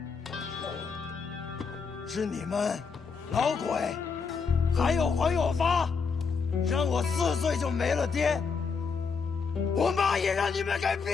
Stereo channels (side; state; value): right; quieter; 5.4 dB